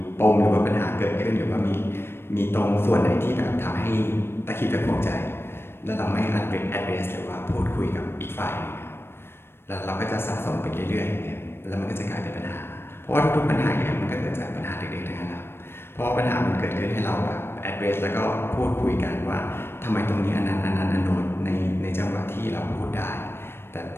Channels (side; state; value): right; late; 0.11 ms